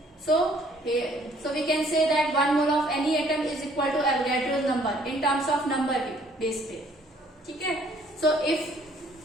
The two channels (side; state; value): both; normal; correlation 0.61